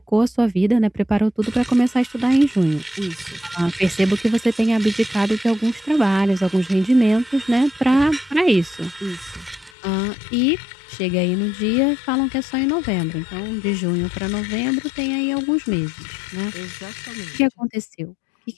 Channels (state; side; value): drops out; right; at 9.7 s